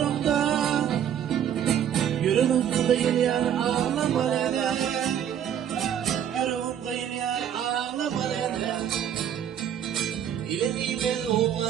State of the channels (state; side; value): quieter; left; 9.5 dB